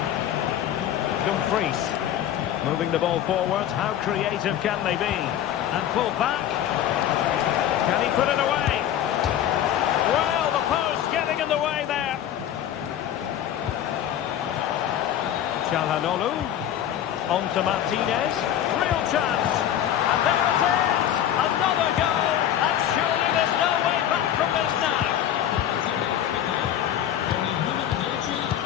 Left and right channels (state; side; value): quieter; right; 10.9 dB